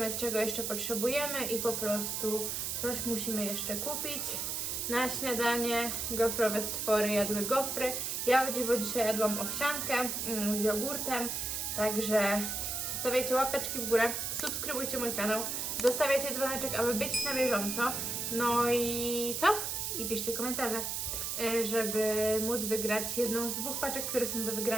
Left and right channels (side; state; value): right; noise; hiss, 2 dB below the sound